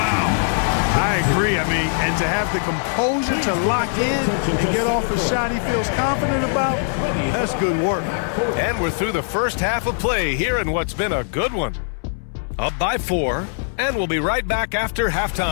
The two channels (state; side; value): silent; right; 65 dB below the other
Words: I agree. I mean, and to have the composure to lock in and get off a shot he feels confident about, that's good work. And we're through the first half of play here in what's been a good one. Up by 4, and we'll be right back after